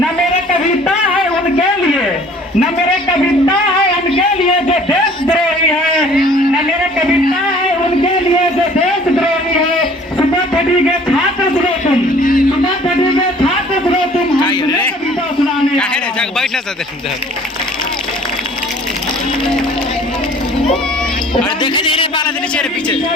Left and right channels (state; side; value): normal; both; correlation 0.52